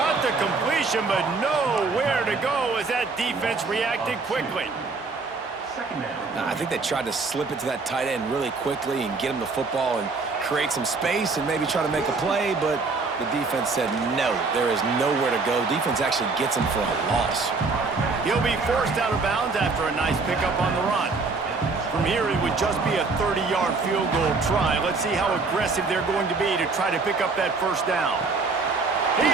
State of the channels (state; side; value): quieter; left; 4.1 dB